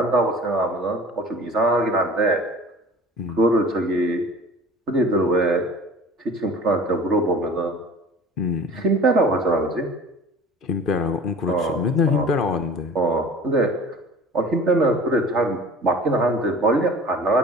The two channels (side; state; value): both; normal; correlation 0.43